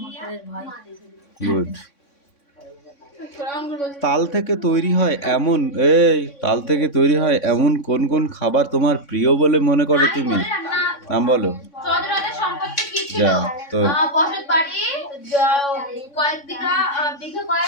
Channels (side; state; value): right; late; 3.6 ms